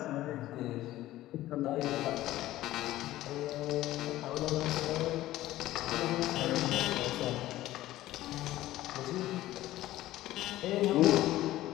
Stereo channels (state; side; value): quieter; right; 15.3 dB